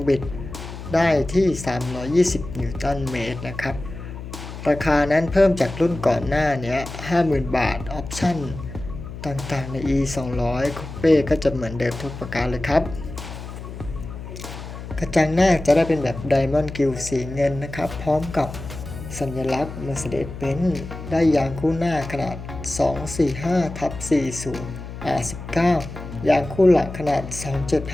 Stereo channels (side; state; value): left; noise; hum, 11 dB below the sound